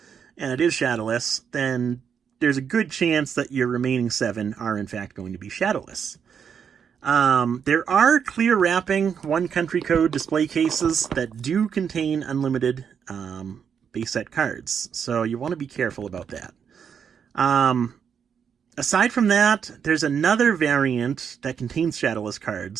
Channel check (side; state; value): left; quieter; 7.3 dB